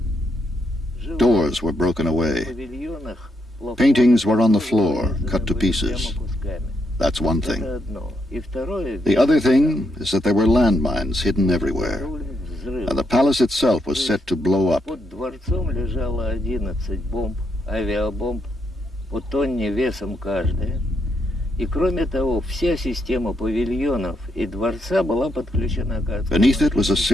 Doors were broken В away. павильонах Paintings were on the floor, cut to pieces. That's one thing. Это одно. И второе, The other thing is that there were landmines hidden everywhere, and the palace itself was set to blow up. под дворцом лежало 11 бомб, авиабомб, по тонне весом каждая. И кроме того, вся система павильонов и дворца была подключена к Beneath it was a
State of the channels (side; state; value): both; normal; correlation 0.78